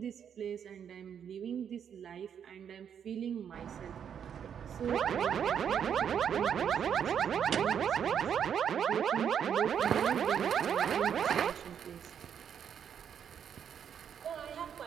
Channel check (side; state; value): left; quieter; 8.2 dB